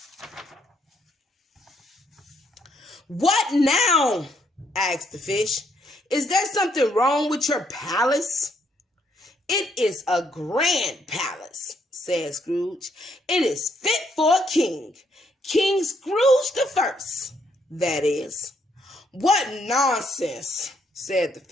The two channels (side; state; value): both; normal; correlation 0.72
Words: What now? Asked the fish. Is there something wrong with your palace? It is a grand palace, said Scrooge. It is fit for a king. King Scrooge the First, that is. What nonsense, said the